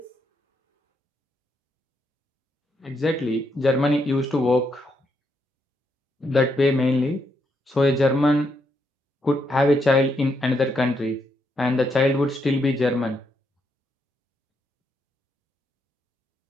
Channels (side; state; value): both; normal; correlation 0.78